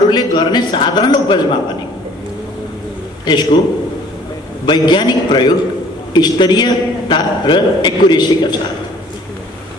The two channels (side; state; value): both; normal; correlation 0.54